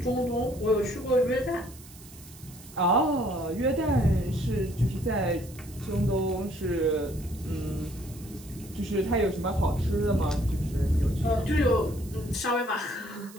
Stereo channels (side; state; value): right; noise; hiss, 20 dB below the sound